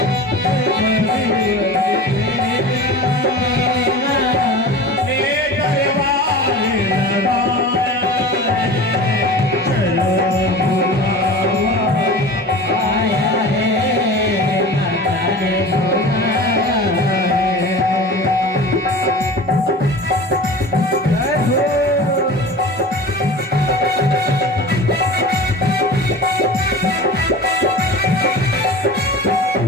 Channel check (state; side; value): normal; both; correlation 0.35